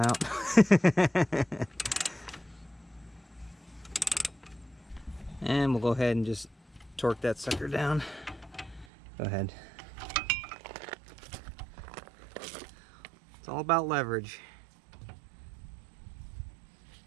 And we'll go ahead and just torque that sucker down. Go ahead. It's all about leverage.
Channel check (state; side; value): drops out; left; at 8.8 s